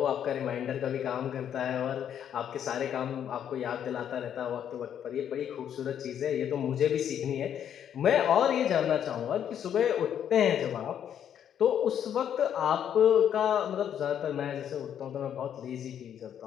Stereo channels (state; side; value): quieter; right; 9.3 dB